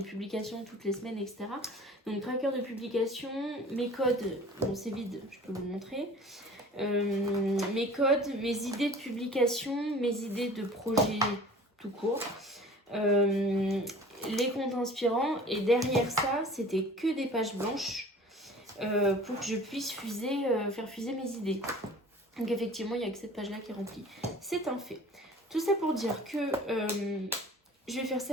publications toutes les semaines, etc. Donc tracker de publication, mes codes, bon c'est vide, je peux vous montrer, mes codes, mes idées de publication, mes idées de projet tout court, les comptes inspirants, et derrière ça c'était que des pages blanches pour que je puisse faire fuser mes idées. Donc effectivement, il n'y a que cette page-là qui est remplie. C'est un fait. Tout ça pour dire que je vais faire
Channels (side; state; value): both; normal; correlation 0.45